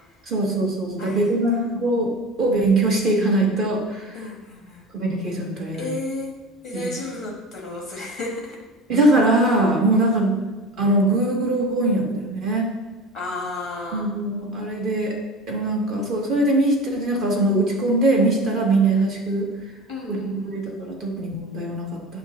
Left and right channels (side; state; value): both; normal; correlation 0.33